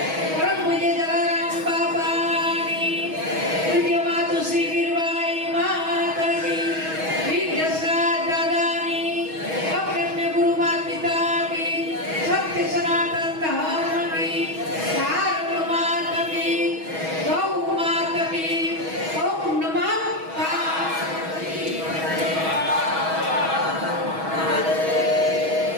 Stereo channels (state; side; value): late; left; 6.3 ms